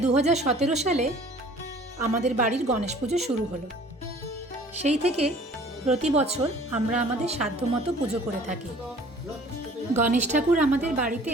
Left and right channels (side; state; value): both; normal; correlation 0.51